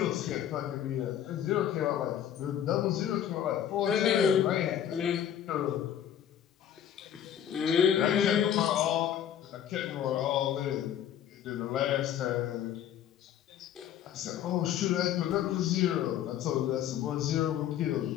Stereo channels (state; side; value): quieter; right; 10.1 dB